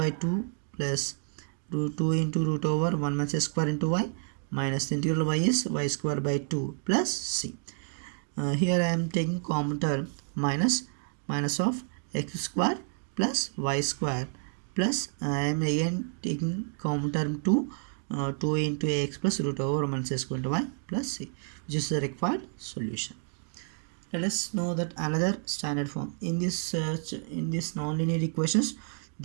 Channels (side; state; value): left; silent; 58 dB below the other